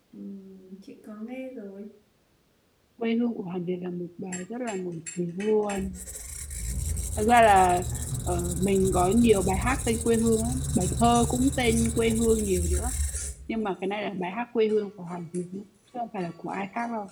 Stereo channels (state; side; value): identical; both; correlation 1.00